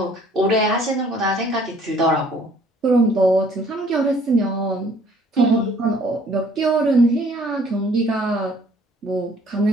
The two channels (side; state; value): both; normal; correlation 0.58